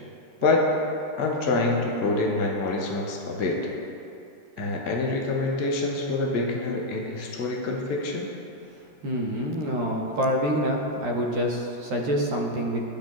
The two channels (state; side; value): late; left; 13 ms